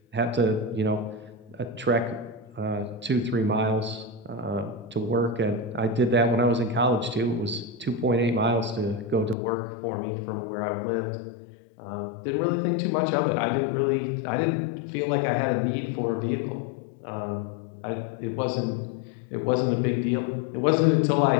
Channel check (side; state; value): right; drops out; at 9.3 s